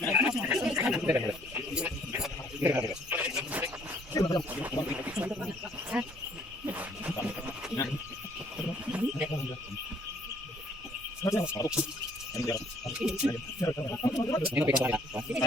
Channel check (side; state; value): both; normal; correlation 0.62